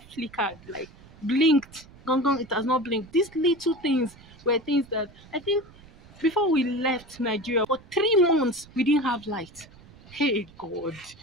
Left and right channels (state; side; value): noise; right; rumble, 23 dB below the sound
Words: flickered, like blinked. Gone, gone. It has not blinked. These little things were things that I think before we left Nigeria for 3 months we didn't have light. Hey God,